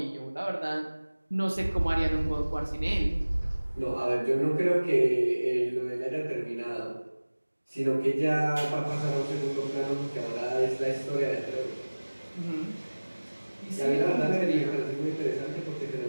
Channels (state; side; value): inverted; both; correlation -1.00